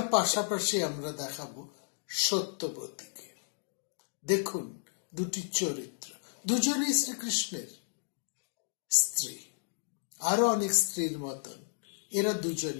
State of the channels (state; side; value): silent; right; digital silence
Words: পাশাপাশি আমরা দেখাবো সত্যবতীকে। দেখুন দুটি চরিত্র, দুজনেই শ্রীকৃষ্ণের স্ত্রী, আরো অনেক স্ত্রীর মতন এরা